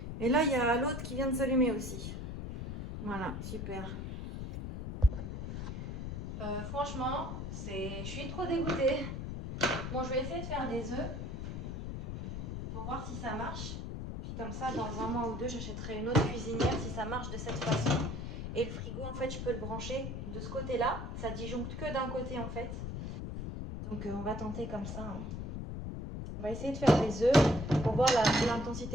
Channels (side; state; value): left; noise; rumble, 5 dB below the sound